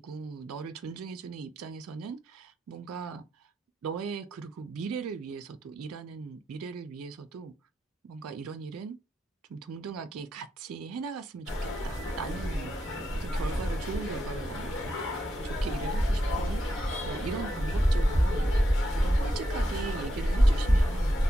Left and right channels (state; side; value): normal; both; correlation 0.84